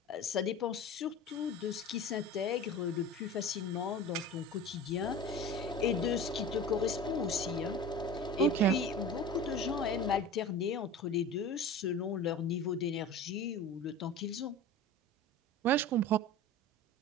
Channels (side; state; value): both; normal; correlation 0.35